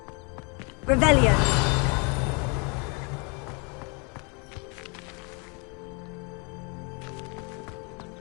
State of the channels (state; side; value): quieter; right; 33.4 dB